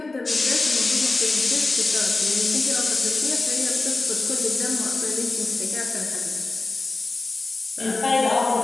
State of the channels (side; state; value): right; quieter; 3.3 dB